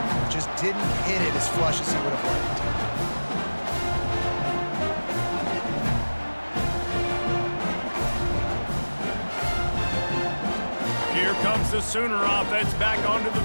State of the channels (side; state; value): both; inverted; correlation -1.00